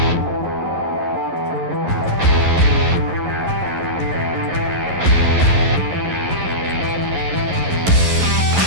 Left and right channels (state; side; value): late; left; 11 ms